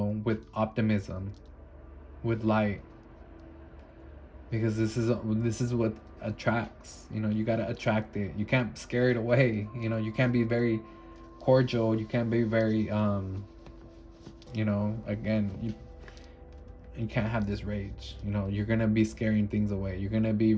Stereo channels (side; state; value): both; identical; correlation 1.00